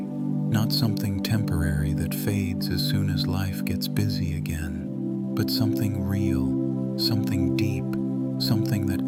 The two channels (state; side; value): identical; both; correlation 1.00